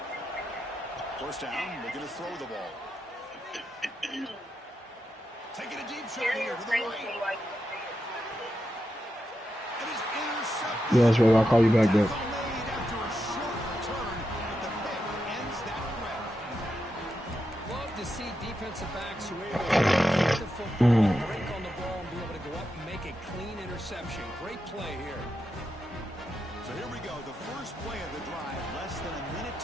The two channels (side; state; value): both; normal; correlation 0.86